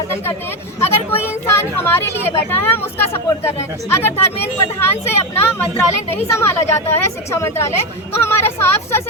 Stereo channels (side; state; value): both; normal; correlation 0.12